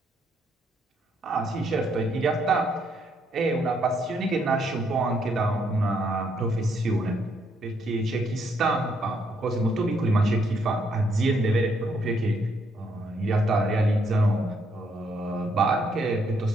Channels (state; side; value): normal; both; correlation 0.73